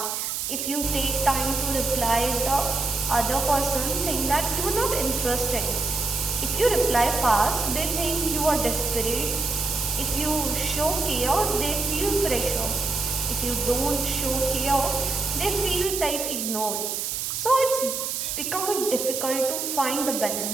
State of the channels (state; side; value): noise; right; hiss, 3 dB below the sound